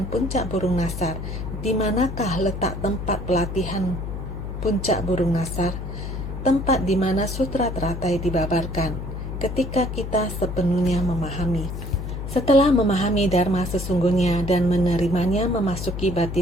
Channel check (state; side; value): noise; left; hum, 6 dB below the sound